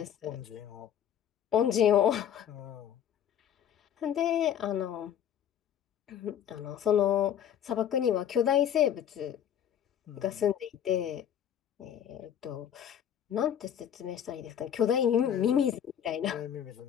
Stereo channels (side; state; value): right; quieter; 9.6 dB